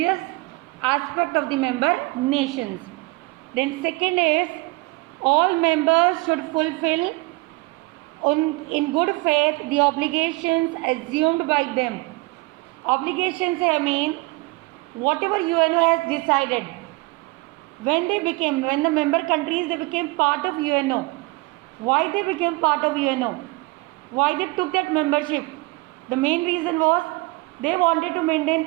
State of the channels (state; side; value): quieter; left; 23.8 dB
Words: aspect of the member nations. Then second is, all members should fulfill in good faith the obligations assumed by them. Obligations, I mean, whatever UNO has decided, when the member countries, they became part of UNO. Why they became part of UNO? Why they took that membership? The main reason was they wanted to